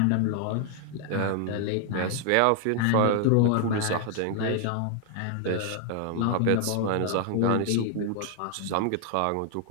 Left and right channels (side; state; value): both; different; correlation 0.00